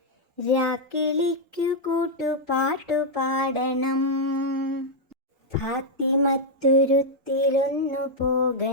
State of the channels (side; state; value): both; normal; correlation -0.03